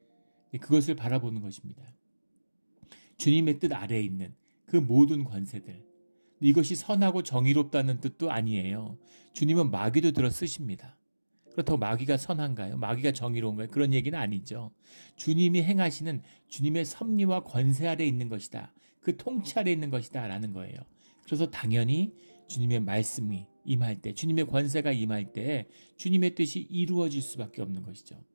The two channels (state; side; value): inverted; both; correlation -1.00